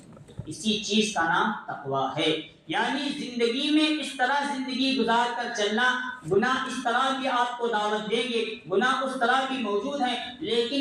اسی چیز کا نام تقویٰ ہے، یعنی زندگی میں اس طرح زندگی گزار کر چلنا۔ گناہ اس طرح بھی آپ کو دعوت دیں گے، گناہ اس طرح بھی موجود ہیں،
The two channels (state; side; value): identical; both; correlation 1.00